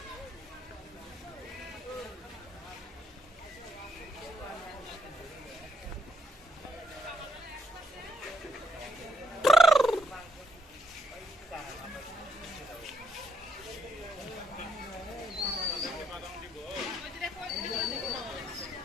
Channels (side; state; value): both; normal; correlation 0.70